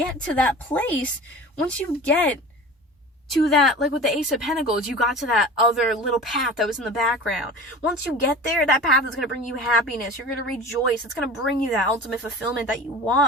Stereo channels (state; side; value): normal; both; correlation 0.37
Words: to that place, once you get to that, like with the Ace of Pentacles, you got to that other little path that was in the background. Once you get there, that path is going to bring you happiness. You're going to rejoice. It's going to bring you that ultimate fulfillment that you